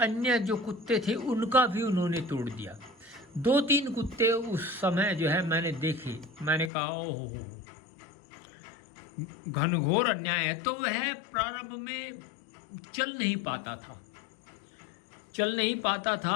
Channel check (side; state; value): right; drops out; at 6.7 s